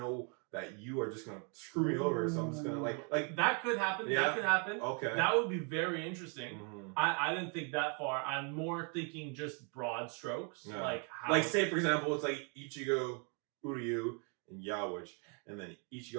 that you are just gonna screw me over, so I'm just gonna like that could happen. Yeah. That could happen. Okay. That would be very interesting. I didn't think that far. I'm more thinking just broad strokes. Yeah. Like say for example, it's like Ichigo, Uryu, and Yawach, and then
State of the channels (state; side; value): quieter; left; 38.2 dB